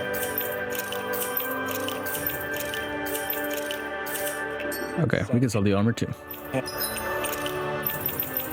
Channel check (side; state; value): both; identical; correlation 1.00